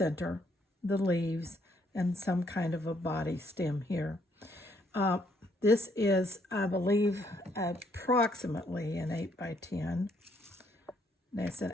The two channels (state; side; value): normal; both; correlation 0.70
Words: the leaves, and some kind of a body stem here. This is, I believe, approximately an 8 by 10. That's